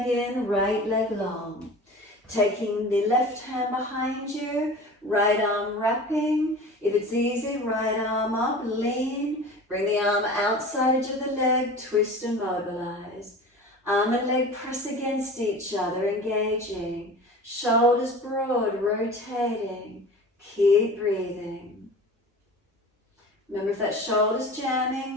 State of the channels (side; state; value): both; normal; correlation 0.37